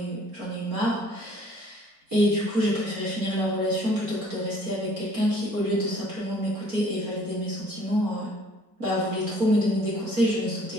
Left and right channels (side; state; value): left; late; 4.4 ms